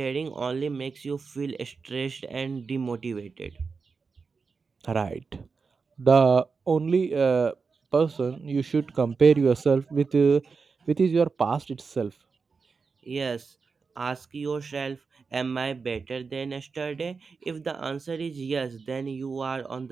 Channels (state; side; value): quieter; left; 4.9 dB